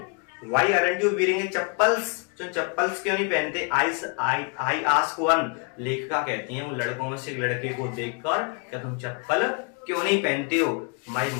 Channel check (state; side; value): quieter; right; 34.5 dB